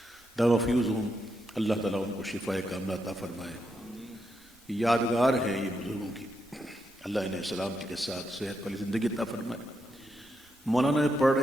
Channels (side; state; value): both; normal; correlation 0.82